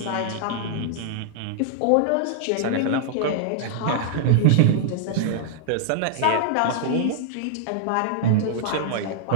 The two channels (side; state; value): both; different; correlation -0.01